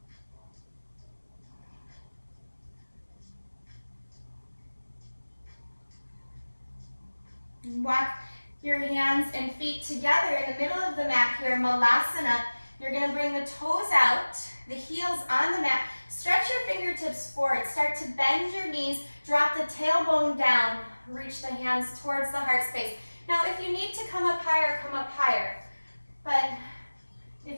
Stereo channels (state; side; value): inverted; both; correlation -1.00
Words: Walk your hands and feet together in the middle of the mat here, malasana. You're going to bring the toes out, the heels on the mat. Stretch your fingertips forward. Start to bend your knees. Drop the tailbone down. Reach the hands towards the heart space. Now, if you need to come up higher, come up higher. But